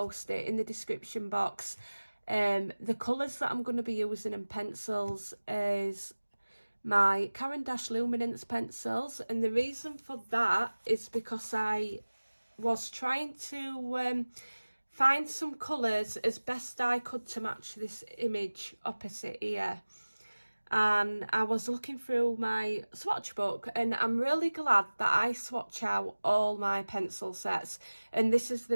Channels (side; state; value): both; inverted; correlation -1.00